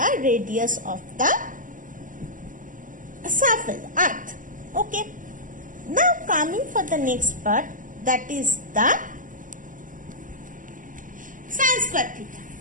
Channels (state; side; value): late; left; 0.38 ms